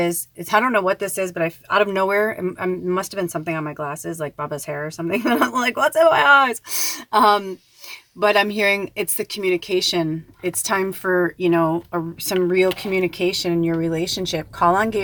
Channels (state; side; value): identical; both; correlation 1.00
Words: I don't know what this is, but out of nowhere, it must have been something on my glasses, like Baba's hair or something. And I'm like, what's in my eyes? But I'm hearing it's the communication. It's time for, some real communication in your relationship. Call on